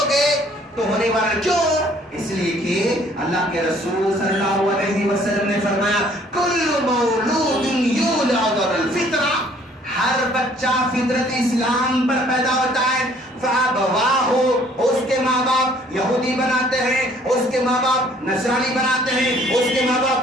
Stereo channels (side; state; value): both; normal; correlation 0.59